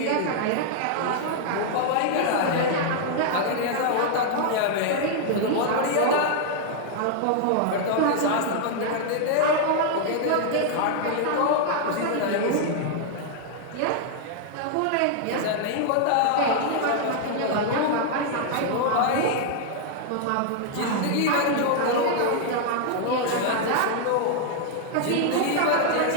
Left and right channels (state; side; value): different; both; correlation 0.00